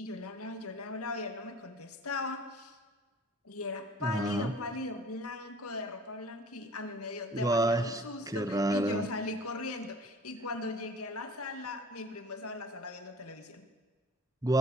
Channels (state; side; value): normal; both; correlation 0.47